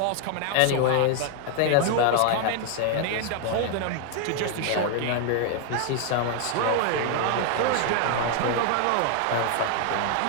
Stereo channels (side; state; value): both; different; correlation 0.00